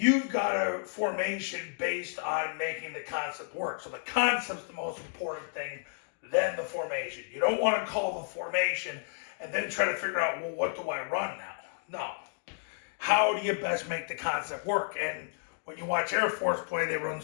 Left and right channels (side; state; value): right; silent; digital silence